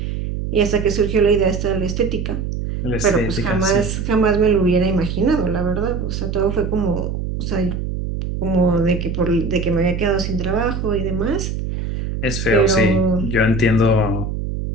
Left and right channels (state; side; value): noise; right; hum, 3 dB below the sound